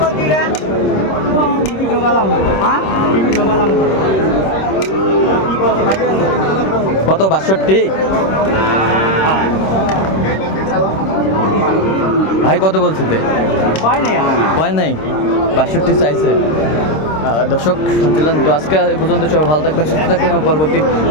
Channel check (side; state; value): right; late; 26 ms